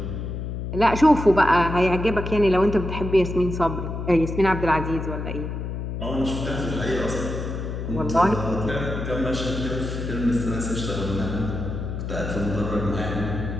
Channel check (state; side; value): noise; left; hum, 5 dB below the sound